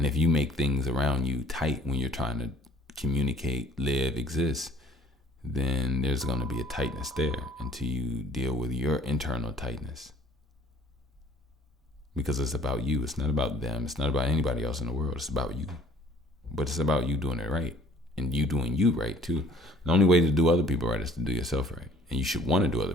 if you make things around you tight when you're trying to communicate, live, exist, then there's going to be a tightness there until you deal with your internal tightness. Because it's about you. It's not about them. It's not about anybody else in the world. It's about you. But it's about you doing it right. And you doing you right, too. The only way to do other people right is to do yourself right. And you should want to do other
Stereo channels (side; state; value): both; normal; correlation 0.54